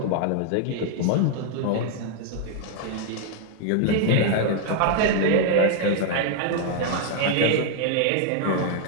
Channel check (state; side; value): different; both; correlation 0.00